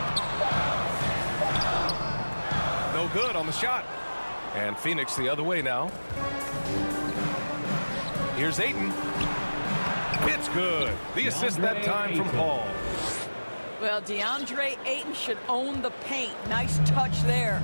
No good on the shot. And Phoenix the other way now. Here's Ayton. It's good. The assist that time from Paul. Well, DeAndre Ayton should own the paint. Nice touch there.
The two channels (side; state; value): both; inverted; correlation -1.00